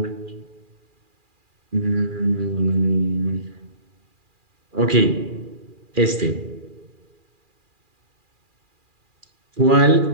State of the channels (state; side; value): late; left; 2.4 ms